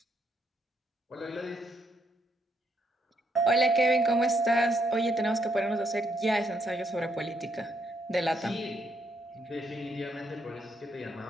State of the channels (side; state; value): both; normal; correlation 0.75